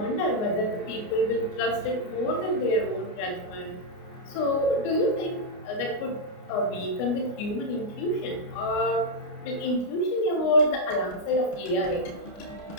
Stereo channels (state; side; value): late; right; 29 ms